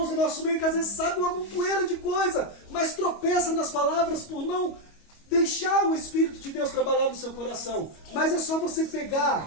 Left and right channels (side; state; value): right; late; 25 ms